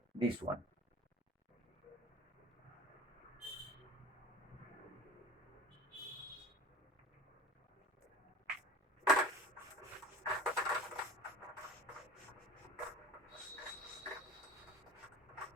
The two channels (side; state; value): both; normal; correlation 0.37